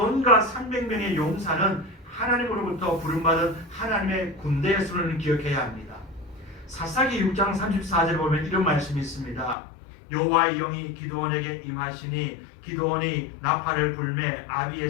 300명의 용사는 하나님으로부터 부름받은 하나님의 군대의 수를 기억해야 합니다. 사사기 6장 34절에 보면 이런 말씀이 있습니다. 여호와의 영이 기드온에게 임하시니 기드온이 나팔을 불매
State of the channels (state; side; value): drops out; right; at 9.6 s